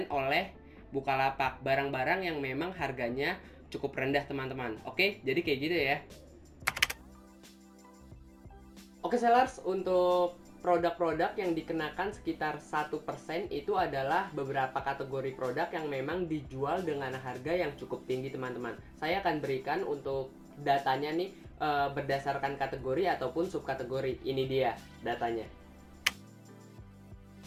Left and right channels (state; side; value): identical; both; correlation 1.00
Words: oleh Bukalapak. Barang-barang yang memang harganya cukup rendah teman-teman. Oke, jadi kayak gitu ya. Oke sellers, untuk produk-produk yang dikenakan sekitar 1% itu adalah beberapa kategori produk yang memang dijual dengan harga yang cukup tinggi teman-teman. Saya akan berikan untuk datanya nih berdasarkan kategori ataupun subkategori. Ini dia datanya.